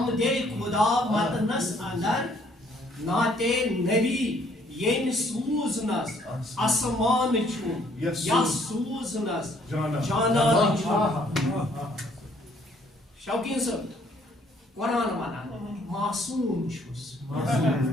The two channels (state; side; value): normal; both; correlation 0.63